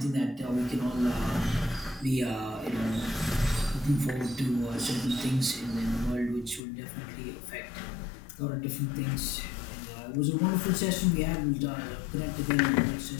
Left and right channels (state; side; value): drops out; right; at 6.6 s